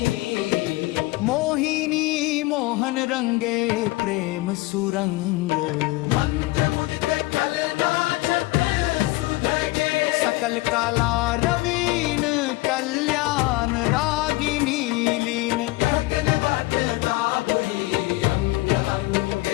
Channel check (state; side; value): quieter; right; 20.7 dB